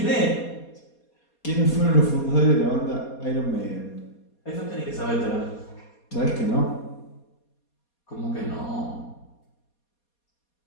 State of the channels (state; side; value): late; right; 4.2 ms